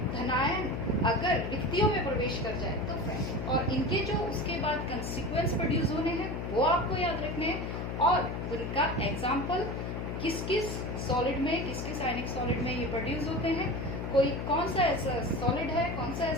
धनायन अगर रिक्तियों में प्रवेश कर जाए तो फ्रैंकल, और इनके जो उसके बाद कंसिक्वेंस प्रोड्यूस होने हैं वो आपको याद रखने हैं, और उनका एग्जाम्पल किस किस सॉलिड में, किस किस आयनिक सॉलिड में ये प्रोड्यूस होते हैं, कोई कौन सा ऐसा सॉलिड है, कौन सा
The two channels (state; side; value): noise; left; hum, 4 dB below the sound